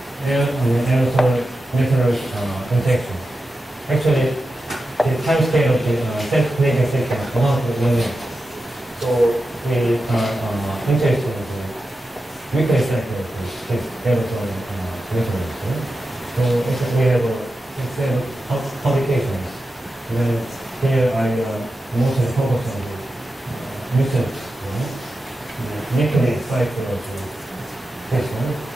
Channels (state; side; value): normal; both; correlation 0.91